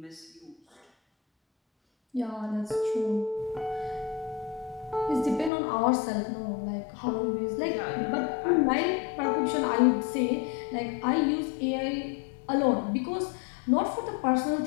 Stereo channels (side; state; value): right; drops out; at 5.5 s